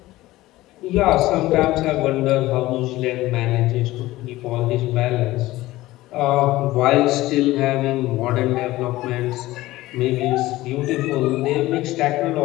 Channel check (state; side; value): quieter; right; 17.4 dB